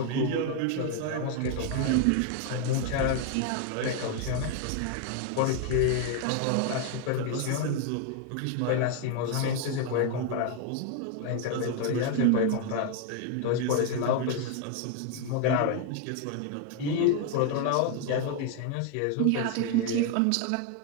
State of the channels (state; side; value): different; both; correlation 0.01